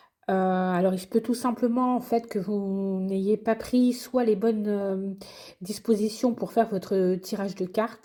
Alors il se peut tout simplement, en fait, que vous n'ayez pas pris soit les bonnes, dispositions pour faire votre tirage de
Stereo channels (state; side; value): identical; both; correlation 1.00